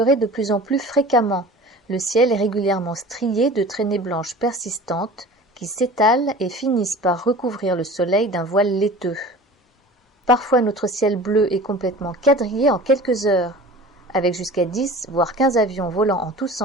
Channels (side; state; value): both; normal; correlation 0.40